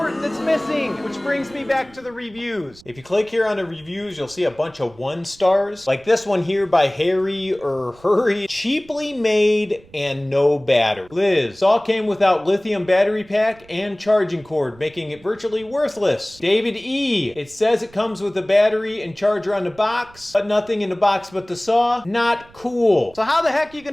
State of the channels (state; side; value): noise; right; rumble, 26 dB below the sound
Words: that's missing, which brings me back to the reviews. If you click here on the reviews, you'll see a bunch of 1 stars, like this one here by Harry or Hurry. Cheaply made and no battery. Liz, saw came without lithium battery pack and charging cord, making it virtually worthless. David E, it says it comes with a battery and charger on the box, but nothing in the box but the saw. Not cool. So how the heck are you